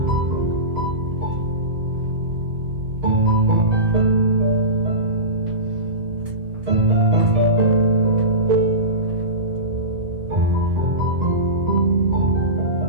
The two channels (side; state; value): left; late; 1.9 ms